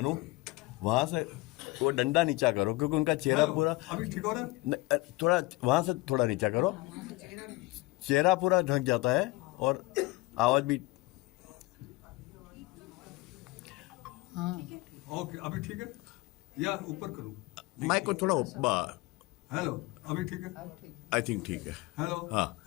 वहां से वो डंडा नीचा करो क्योंकि उनका चेहरा पूरा अभी ठीक हो रहा है। थोड़ा वहां से थोड़ा नीचा करो, चेहरा पूरा ढक जाता है और आवाज भी। ओके, अभी ठीक है या ऊपर करूं? माइक को थोड़ा ऊपर। हेलो, अभी ठीक है? आई थिंक ठीक है। हेलो, हाँ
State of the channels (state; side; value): quieter; right; 21.5 dB